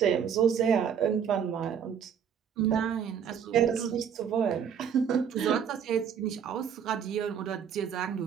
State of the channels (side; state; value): left; quieter; 7.8 dB